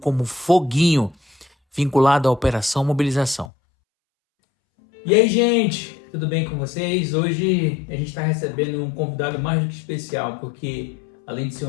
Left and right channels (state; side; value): drops out; right; at 3.5 s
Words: Foguinho, vinculado à Operação Mobilização. E aí, gente, tudo bem com vocês? Hoje a gente está recebendo um convidado mais do que especial, porque além de ser